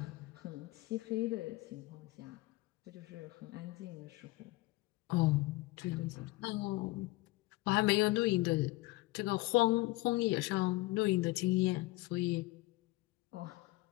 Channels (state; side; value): quieter; right; 20.7 dB